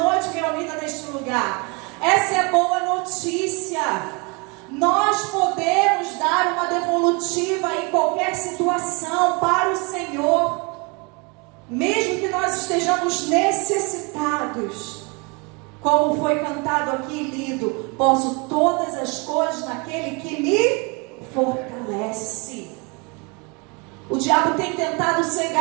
reunida neste lugar. Essa é a boa notícia. Nós podemos dar uma devolutiva em qualquer situação para o Senhor, mesmo que nós estejamos necessitados. Como foi cantado aqui e lido: posso todas as coisas naquele que me fortalece. O diabo tem tentado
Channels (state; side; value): quieter; left; 30.5 dB